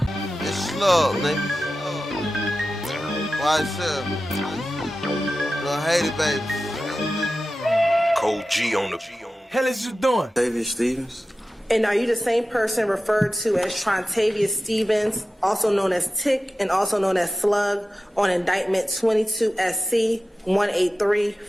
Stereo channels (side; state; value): both; normal; correlation 0.94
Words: It's slug, nigga. YSL. Little Haiti, baby. Cold G on the Hell is you doing? David Stevens. And are you the same person referred to as Trontavious Stevens, also known as Tick and also known as Slug, on indictment 22 SC